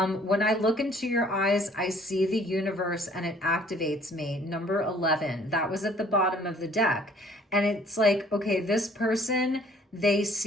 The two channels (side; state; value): both; normal; correlation 0.57